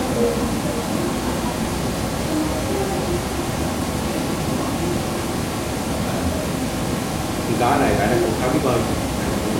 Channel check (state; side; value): identical; both; correlation 1.00